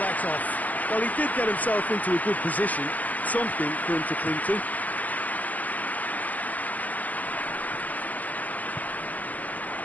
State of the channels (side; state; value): right; late; 0.078 ms